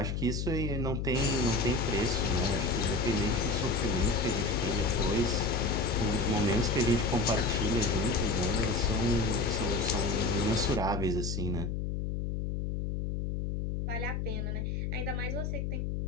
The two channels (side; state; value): left; noise; hum, 2 dB below the sound